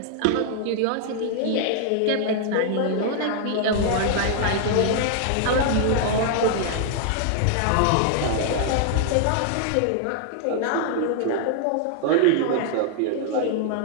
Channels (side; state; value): both; different; correlation -0.01